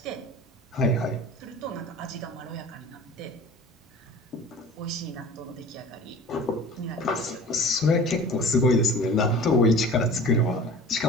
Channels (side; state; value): both; normal; correlation 0.41